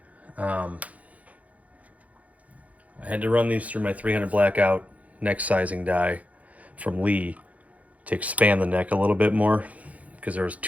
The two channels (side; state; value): left; late; 0.070 ms